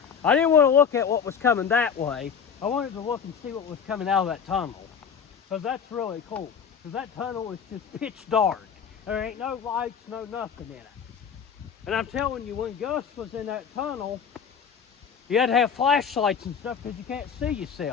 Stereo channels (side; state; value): right; quieter; 7.1 dB